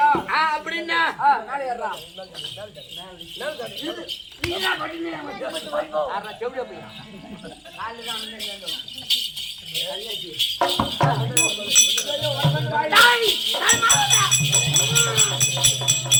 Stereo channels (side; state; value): both; identical; correlation 1.00